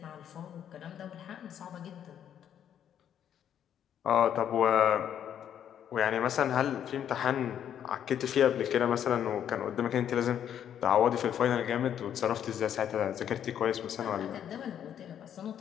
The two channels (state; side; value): quieter; right; 9.6 dB